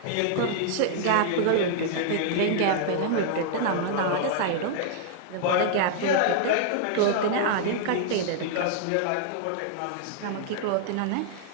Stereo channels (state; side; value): different; both; correlation -0.01